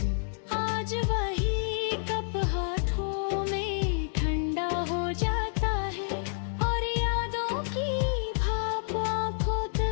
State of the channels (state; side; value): silent; right; digital silence